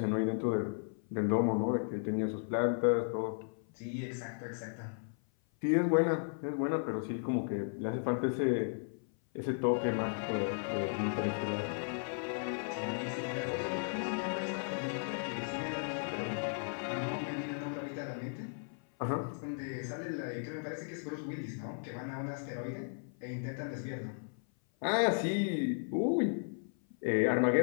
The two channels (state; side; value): silent; right; 54 dB below the other